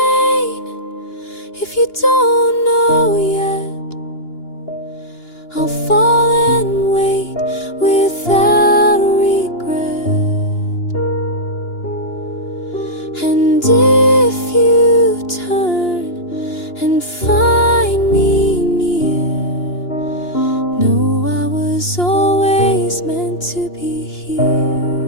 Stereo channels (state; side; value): late; right; 2.9 ms